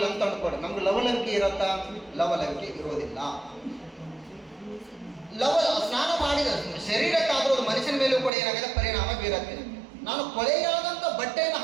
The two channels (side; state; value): left; drops out; at 8.3 s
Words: ಅಂತ ಅನ್ಕೊಡಿ, ನಮ್ಗೆ ಲವಲವಿಕೆ ಇರತ್ತಾ? ಲವಲವಿಕೆ ಇರೋದಿಲ್ಲ. ಸ್ನಾನ ಮಾಡಿದ ಶರೀರಕ್ಕಾದ್ರೂ ಅದು ಮನುಷ್ಯನ ಮೇಲೂ ಕೂಡ ಏನಾಗಿದೆ? ಪರಿಣಾಮ ಬೀರುತ್ತೆ. ನಾನು ಕೊಳೆಯಾದಂಥ ಬಟ್ಟೆಯನ್ನು